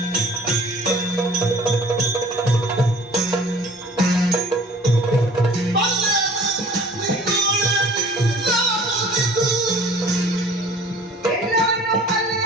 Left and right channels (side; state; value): both; normal; correlation 0.49